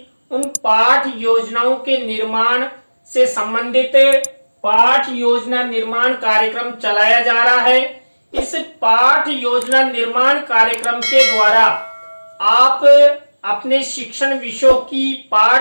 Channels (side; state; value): both; inverted; correlation -1.00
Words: उन पाठ योजनाओं के निर्माण से संबंधित पाठ योजना निर्माण कार्यक्रम चलाया जा रहा है। इस पाठ योजना निर्माण कार्यक्रम के द्वारा आप अपने शिक्षण विषयों की